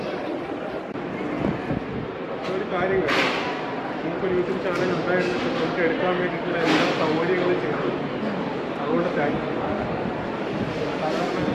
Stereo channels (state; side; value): identical; both; correlation 1.00